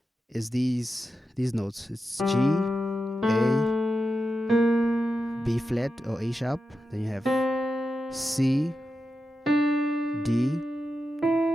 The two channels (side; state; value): both; normal; correlation 0.90